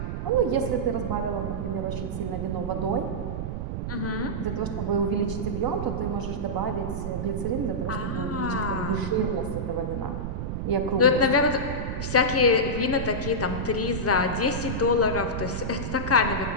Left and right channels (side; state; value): right; noise; rumble, 3 dB below the sound